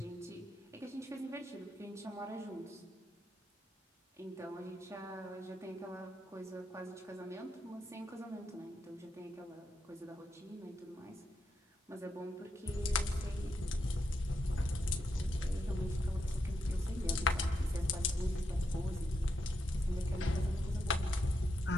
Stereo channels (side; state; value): both; normal; correlation 0.83